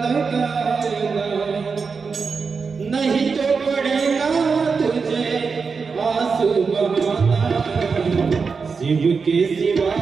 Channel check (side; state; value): left; quieter; 5.1 dB